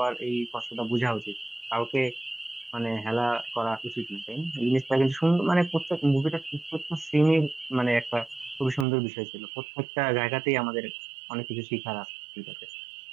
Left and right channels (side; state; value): left; drops out; at 8.8 s